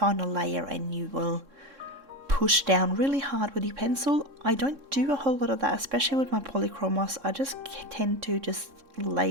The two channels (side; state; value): left; late; 3.6 ms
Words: layer and you will push down really hard with your pencil. I don't do a whole lot of that, especially with my polychromos. I just tend to just